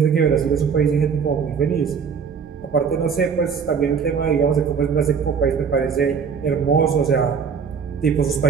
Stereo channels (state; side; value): quieter; left; 6.3 dB